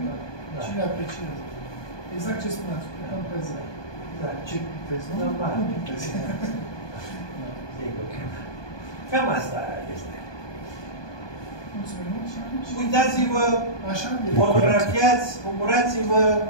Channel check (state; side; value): late; right; 1.2 ms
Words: Cine apreciază? Exact ce spuneați, cam pe zi. Da. Ce pictezi, nu? Normal. Nu pictezi. Sigur. Cam asta este. Mulțumim. Uitați-vă, fotografiați, bucurați-vă,